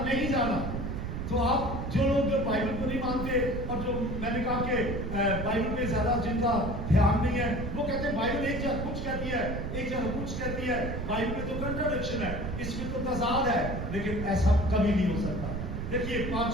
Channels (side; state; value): right; noise; rumble, 4 dB below the sound